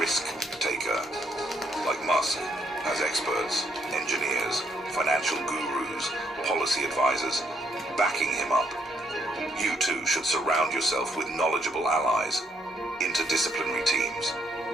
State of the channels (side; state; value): both; normal; correlation 0.72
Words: taker, like Musk, has experts, engineers, financial gurus, policy advisors backing him up. You too should surround yourself with knowledgeable allies, interdisciplinary teams.